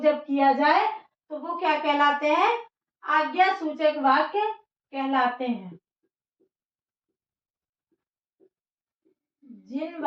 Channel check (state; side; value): identical; both; correlation 1.00